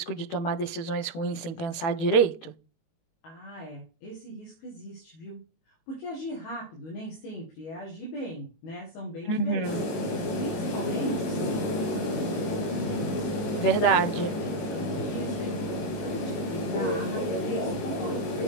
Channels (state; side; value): late; right; 18 ms